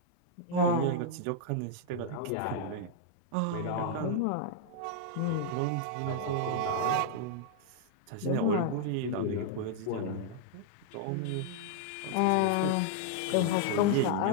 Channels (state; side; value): different; both; correlation -0.01